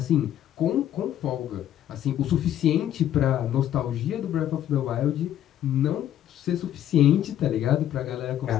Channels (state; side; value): quieter; right; 11.4 dB